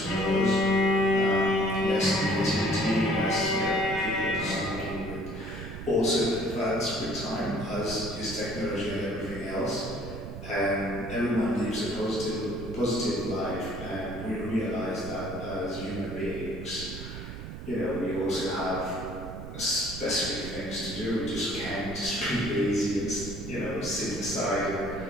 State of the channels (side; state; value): right; noise; rumble, 9 dB below the sound